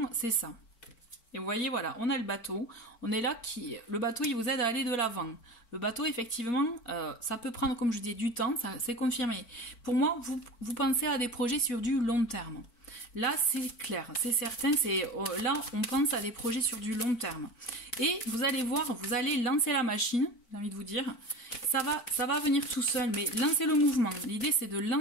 c'est ça. Et vous voyez, voilà, on a le bateau. On est là, le bateau, il vous aide à aller de l'avant. Le bateau, effectivement, ça peut prendre, comme je dis, du temps, c'est confirmé. Pour moi, vous pensez à des projets sur du long terme. Là, c'est clair, c'est certain, là, on pense à des projets sur du long terme. Et vous allez voir, vous allez lancer la machine, j'ai envie de vous dire. Ça va venir tout seul, mais lancez le mouvement. L'idée, c'est de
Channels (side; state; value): right; late; 4.5 ms